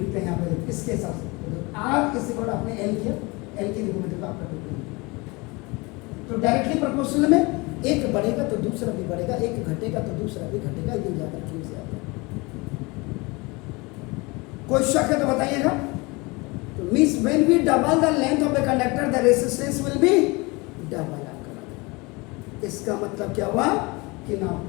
हैं यहाँ पे देखो इसके हिसाब से, R इज इक्वल टू आपने L किया, L की देखो मतलब आपका 2, तो डायरेक्टली प्रोपोर्शनल में एक बढ़ेगा तो दूसरा भी बढ़ेगा, एक घटेगा तो दूसरा भी घटेगा, ये ज्यादा क्यों से आता है? कोई शक है तो बताइएगा। तो means when we double the length of the conductor the resistance will be double आपका। इसका मतलब क्या हुआ कि ना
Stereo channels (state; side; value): quieter; right; 25.6 dB